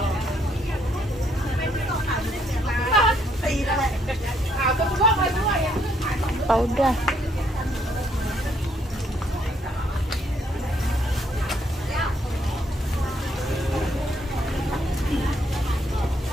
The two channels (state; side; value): normal; both; correlation 0.71